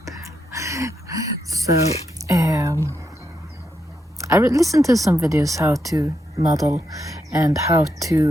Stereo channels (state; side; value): normal; both; correlation 0.82